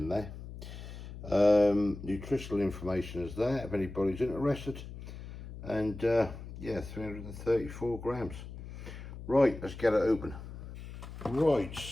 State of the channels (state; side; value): noise; left; hum, 12 dB below the sound